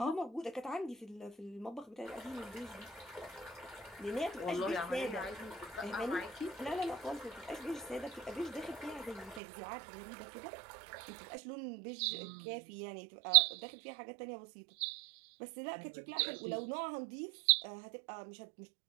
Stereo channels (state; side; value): drops out; left; at 9.4 s